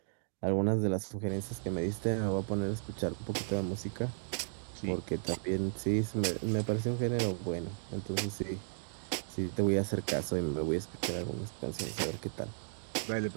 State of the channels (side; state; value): left; silent; digital silence